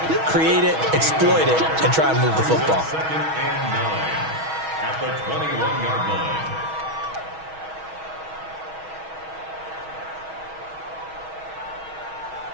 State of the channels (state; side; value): late; left; 6.3 ms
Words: create it, exploit it, and try and move the football. 2nd and 9 at the 21-yard line.